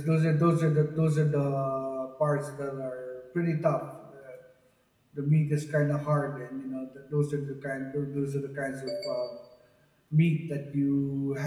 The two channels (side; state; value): both; identical; correlation 1.00